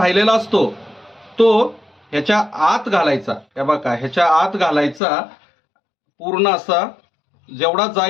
असतो तो ह्याच्या आत घालायचा. हे बघा ह्याच्या आत घालायचा, पूर्ण असा जेवढा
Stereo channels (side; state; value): right; drops out; at 5.0 s